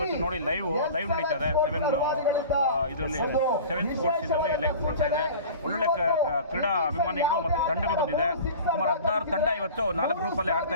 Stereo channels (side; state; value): both; inverted; correlation -0.39